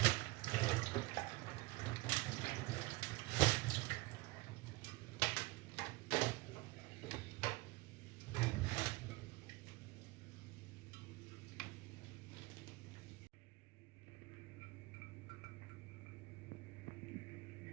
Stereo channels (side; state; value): left; quieter; 21.9 dB